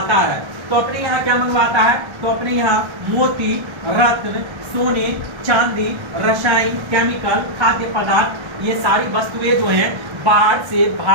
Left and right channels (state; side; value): late; left; 1.3 ms